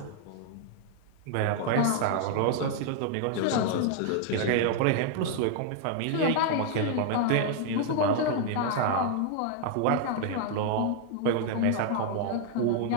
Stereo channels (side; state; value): both; different; correlation 0.00